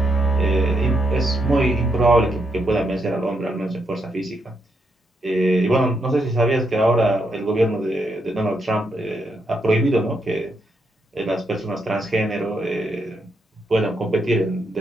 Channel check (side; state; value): both; normal; correlation 0.79